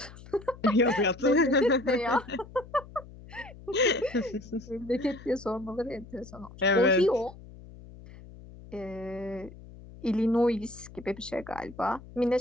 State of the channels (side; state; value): left; noise; hum, 18 dB below the sound